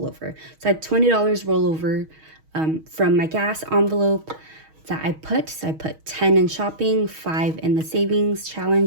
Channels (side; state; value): left; late; 6.3 ms